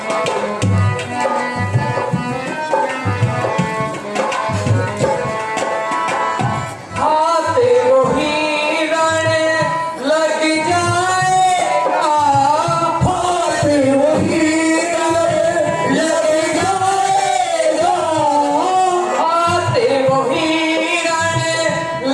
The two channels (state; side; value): identical; both; correlation 1.00